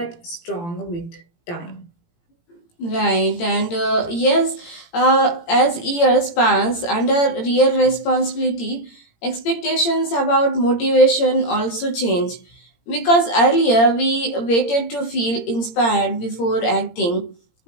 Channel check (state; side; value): late; right; 17 ms